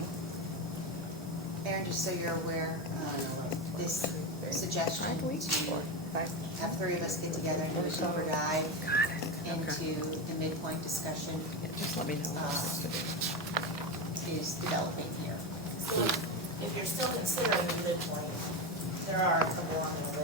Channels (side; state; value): both; normal; correlation 0.16